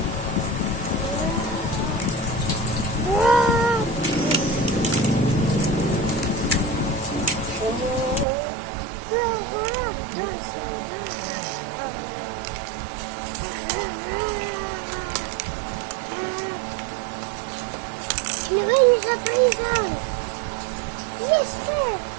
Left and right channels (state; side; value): drops out; left; at 8.2 s